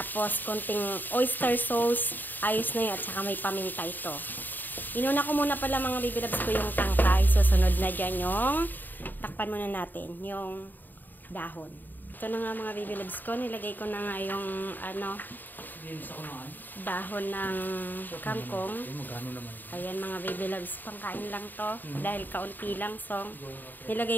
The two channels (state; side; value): late; right; 0.089 ms